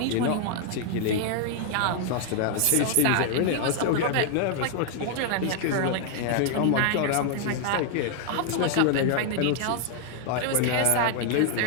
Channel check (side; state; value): both; different; correlation 0.00